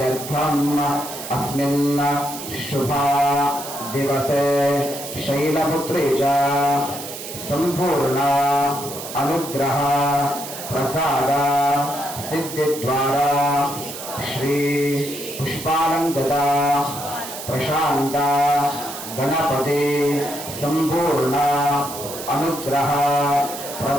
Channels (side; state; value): right; noise; hiss, 10 dB below the sound